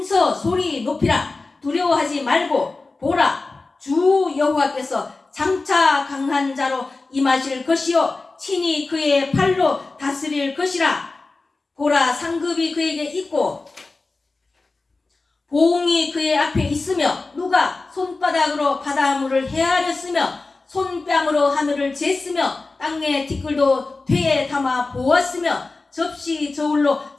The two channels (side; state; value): right; quieter; 3.6 dB